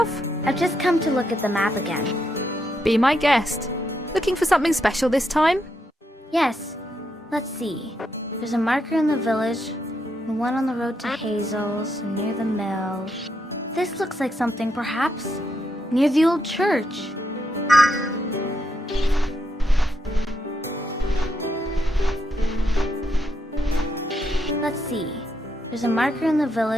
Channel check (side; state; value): both; normal; correlation 0.80